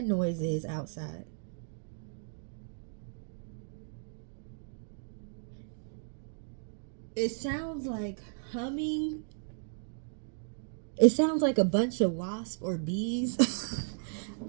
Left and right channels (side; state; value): left; silent; digital silence